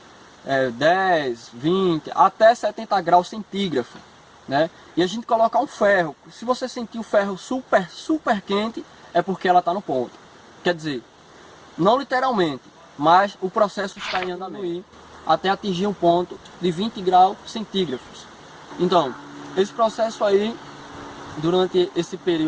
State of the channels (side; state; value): both; identical; correlation 1.00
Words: 10, 20, até 70 graus centígrados, né? E a gente coloca um ferro. Se você sentir o ferro super quente, é porque ela está no ponto. Quer dizer, não literalmente, mas o processo está em andamento até atingir um ponto de 20 graus centígrados. Então, esse processo aí, durante esse